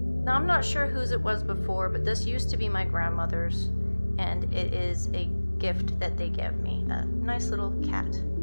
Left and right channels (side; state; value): both; inverted; correlation -1.00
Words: Now I'm not sure whose it was before, but this used to be my grandmother's, and it is a gift that they gave me. A nice little cat.